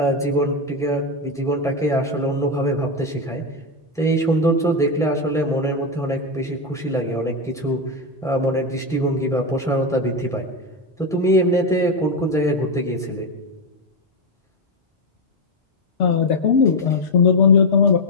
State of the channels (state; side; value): normal; both; correlation 0.08